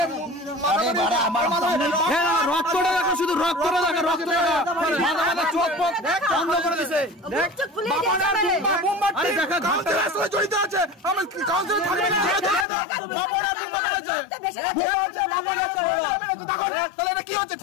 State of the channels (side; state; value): right; drops out; at 12.7 s